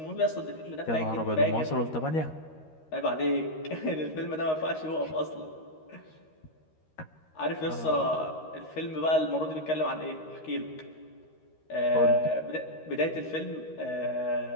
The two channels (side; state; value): right; late; 13 ms